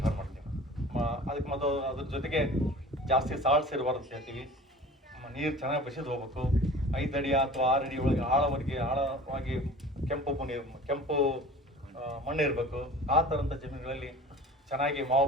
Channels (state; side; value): normal; both; correlation 0.42